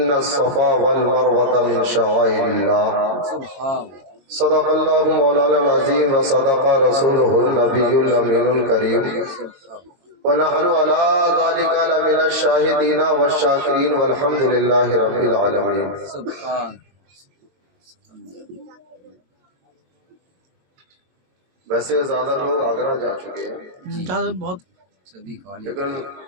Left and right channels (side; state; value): left; late; 22 ms